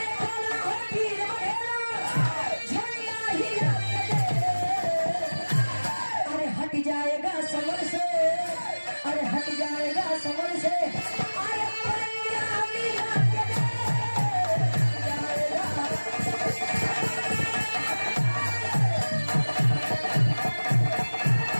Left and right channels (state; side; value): inverted; both; correlation -1.00